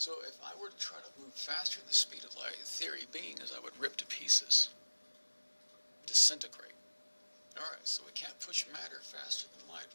if I were to try to move faster than the speed of light, the theory being is I would rip to pieces, disintegrate. Alright, so we can't push matter faster than light,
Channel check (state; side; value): inverted; both; correlation -1.00